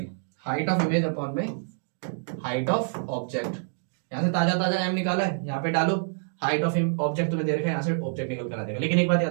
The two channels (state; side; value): silent; left; digital silence